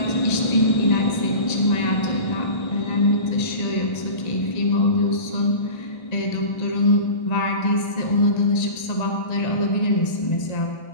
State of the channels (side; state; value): right; late; 1.8 ms